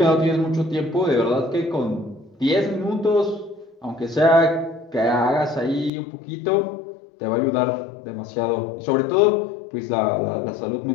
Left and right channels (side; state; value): right; drops out; at 5.9 s